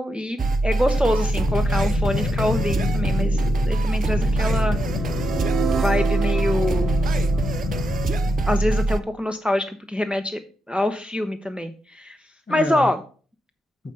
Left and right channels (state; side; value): normal; both; correlation 0.85